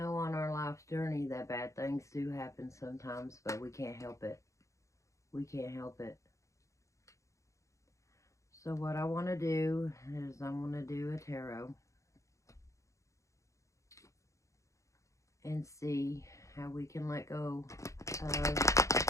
on our life's journey that bad things do happen sometimes, but we can't help it. We can't help it. So what I want to do is I want to do a tarot and see how we can let go of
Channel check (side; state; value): right; late; 0.15 ms